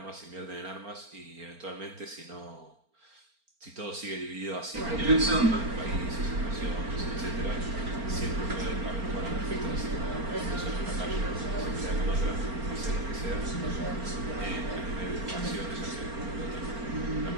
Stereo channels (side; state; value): left; late; 4.4 ms